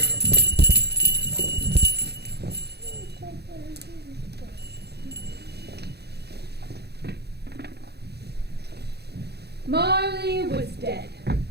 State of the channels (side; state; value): left; late; 0.48 ms